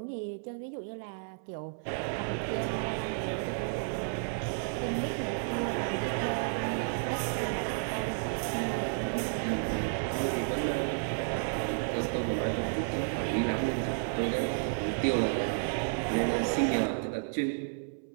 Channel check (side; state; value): left; silent; 56 dB below the other